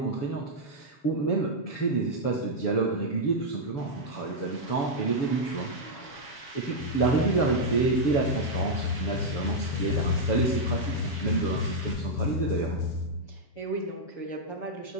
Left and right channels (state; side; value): late; right; 7.0 ms